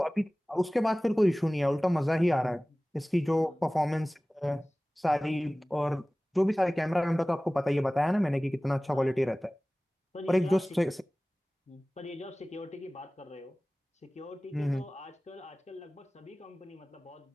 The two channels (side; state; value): both; normal; correlation 0.98